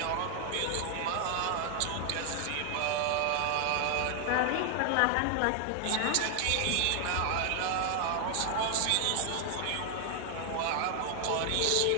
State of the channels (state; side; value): different; both; correlation 0.00